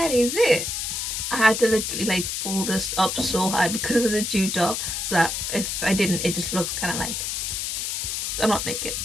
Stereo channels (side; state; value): left; noise; hiss, 2 dB below the sound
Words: is it. I had to literally like pull this up so high because it was a tube top, so that if I didn't, it just looked kind of like I'm not naked,